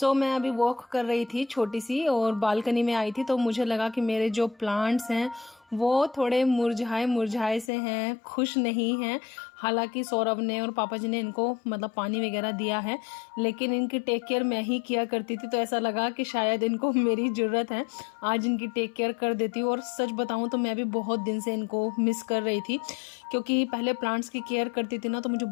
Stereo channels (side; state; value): right; drops out; at 7.7 s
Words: मैं अभी वॉक कर रही थी छोटी सी और बालकनी में आई थी, तो मुझे लगा कि मेरे जो प्लांट्स हैं वो थोड़े मुरझाए मुरझाए से हैं, खुश नहीं हैं। हालांकि सौरभ ने और पापा जी ने इनको मतलब पानी वगैरह दिया है, लेकिन इनकी टेक केयर मैं ही किया करती थी, तो ऐसा लगा कि शायद इनको मेरी ज़रूरत है, आज इनकी टेक केयर कर देती हूँ। और सच बताऊँ तो मैं भी बहुत दिन से इनको मिस कर रही थी, क्योंकि पहले प्लांट्स की केयर करती थी ना, तो मुझे